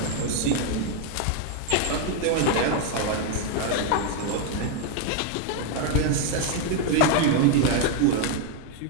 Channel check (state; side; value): different; both; correlation 0.01